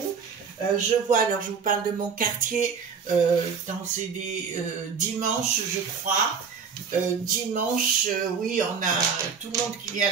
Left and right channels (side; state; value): left; quieter; 6.0 dB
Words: Je vois, alors je vous parle de mon quartier, c'est des dimanches, je crois. Dimanche, oui, on a tout le monde qui vient à